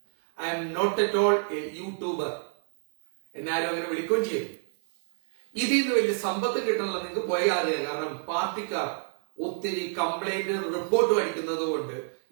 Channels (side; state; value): left; silent; 59 dB below the other